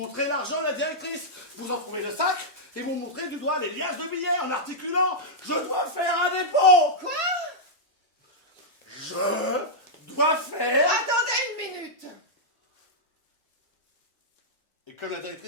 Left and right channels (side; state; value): both; normal; correlation -0.07